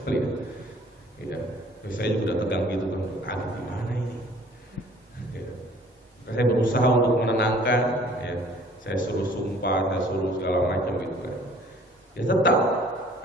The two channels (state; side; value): normal; both; correlation 0.54